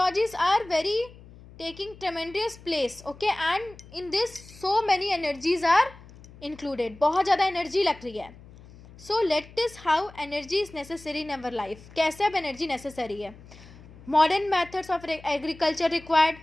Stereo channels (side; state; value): left; noise; hum, 20 dB below the sound